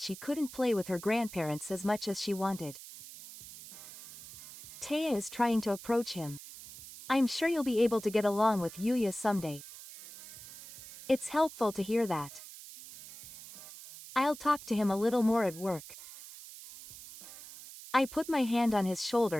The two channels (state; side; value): noise; right; hiss, 15 dB below the sound